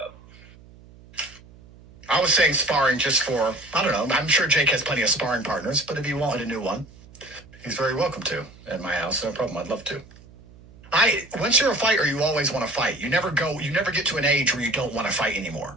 I was saying sparring just for, I don't know. I'm sure Jake has plenty of sparring partners, but if he wanted a new one, he's very welcome to at my house. No problem. I'd love to. Once you're a fighter, you always want to fight. You never get to an age where you don't want to fight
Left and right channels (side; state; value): right; noise; hum, 23 dB below the sound